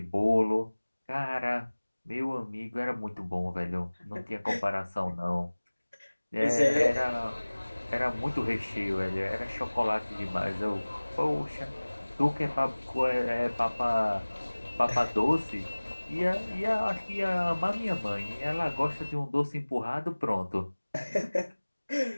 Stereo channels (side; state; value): both; inverted; correlation -1.00